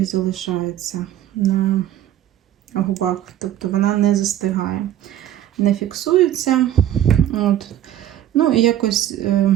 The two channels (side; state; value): left; quieter; 11.9 dB